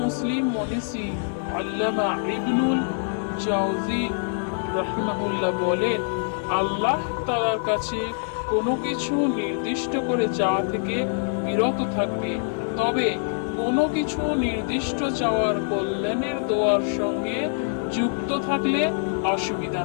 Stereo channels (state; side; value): silent; right; 55 dB below the other